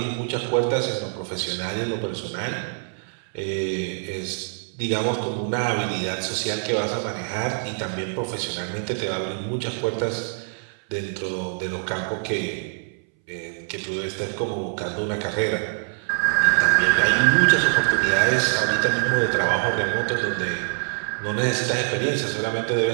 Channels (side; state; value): left; silent; 62 dB below the other